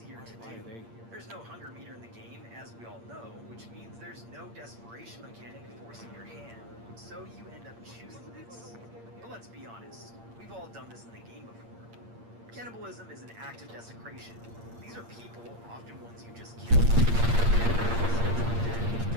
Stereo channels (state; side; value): late; left; 8.7 ms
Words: to do. There's no hunger meter in the game, as we all know, which means there's no desperation mechanic forcing your hand, so you end up choosing this. But let's be honest, we've all done this in the game before. Cannibalism is an act of desecration. These are people, often ones you just killed, turning